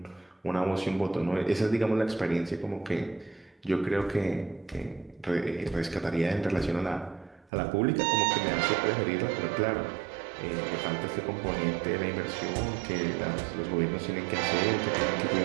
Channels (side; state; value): left; drops out; at 7.5 s